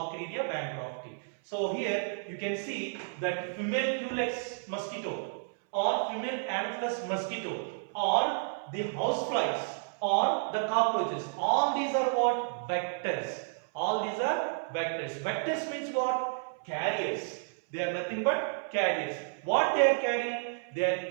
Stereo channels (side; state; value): left; silent; 57 dB below the other